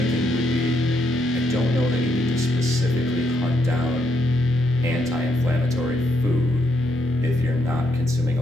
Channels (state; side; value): normal; both; correlation 0.77